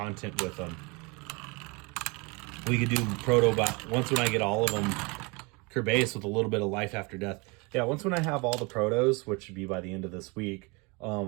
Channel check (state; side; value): quieter; left; 28.5 dB